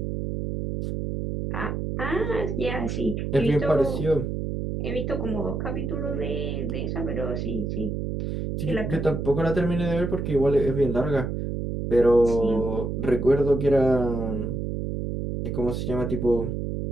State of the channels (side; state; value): right; noise; hum, 3 dB below the sound